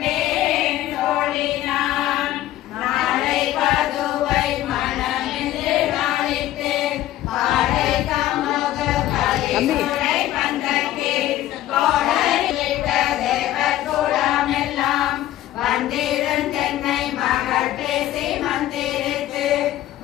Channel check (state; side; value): quieter; right; 14.0 dB